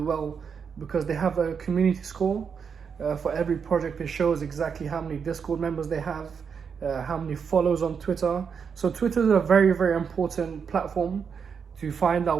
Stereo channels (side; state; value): left; quieter; 6.5 dB